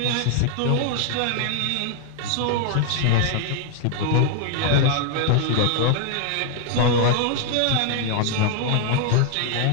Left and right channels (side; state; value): both; different; correlation 0.00